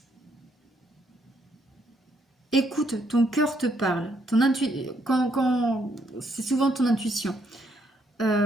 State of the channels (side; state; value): both; normal; correlation 0.72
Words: Écoute, ton cœur te parle. C'est souvent ton intuition.